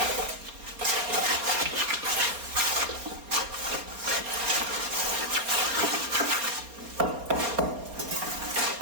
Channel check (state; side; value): late; left; 4.3 ms